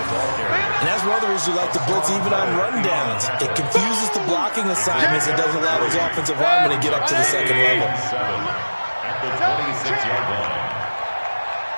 that's one of the reasons we like to blitz even on rundowns. It confuses the blocking assignments. It doesn't allow those offensive linemen to get up to the second level. At the 26-yard line.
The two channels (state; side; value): inverted; both; correlation -1.00